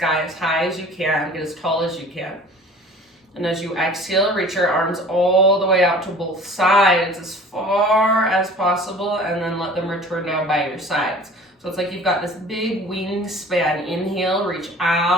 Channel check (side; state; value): both; normal; correlation 0.45